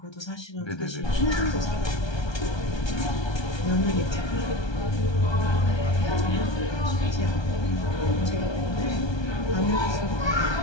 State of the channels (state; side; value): late; right; 1.3 ms